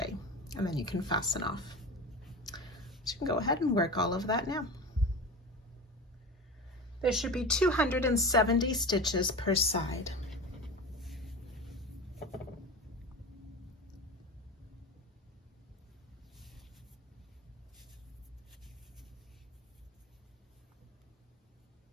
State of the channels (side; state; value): both; normal; correlation 0.30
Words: and then you can fasten off. So you can go ahead and work all of that now. There should be 270 stitches per side.